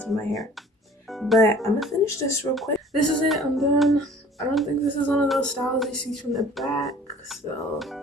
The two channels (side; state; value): both; normal; correlation 0.50